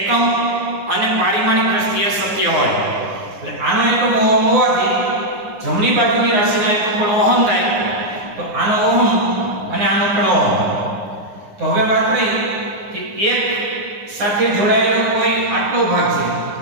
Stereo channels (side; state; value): left; late; 9.7 ms